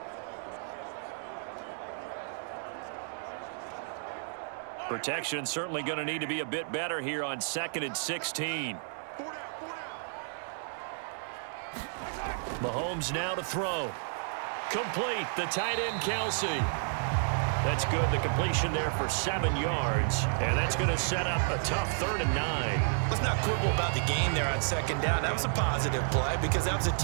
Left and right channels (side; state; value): left; silent; digital silence